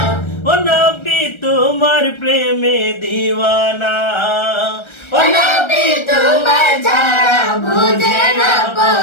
ও নবী তোমার প্রেমে দিওয়ানা, ও নবী তোমার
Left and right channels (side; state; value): right; late; 1.3 ms